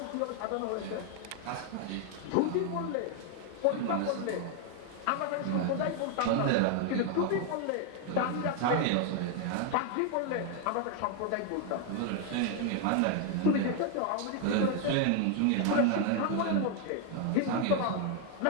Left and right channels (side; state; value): both; different; correlation 0.01